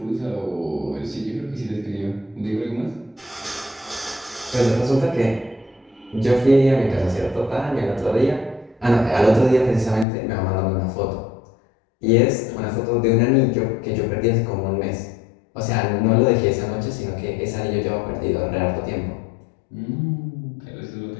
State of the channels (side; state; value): right; drops out; at 10.1 s